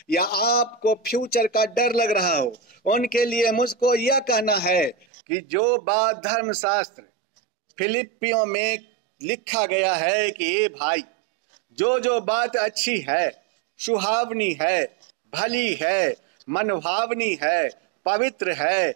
या आपको फ्यूचर का डर लग रहा हो। उनके लिए मुझको यह कहना है कि जो बात धर्मशास्त्र फिलिपियों में लिखा गया है कि ये भाई, जो बात अच्छी है, सुहावनी है, भली है, मनभावनी है, पवित्र है,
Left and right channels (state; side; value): drops out; left; at 5.1 s